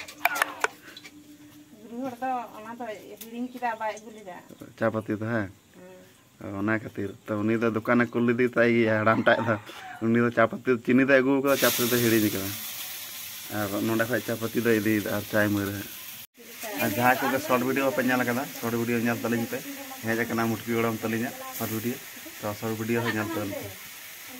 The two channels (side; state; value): both; identical; correlation 1.00